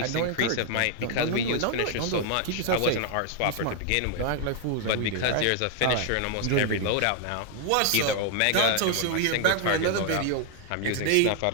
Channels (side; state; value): both; different; correlation 0.00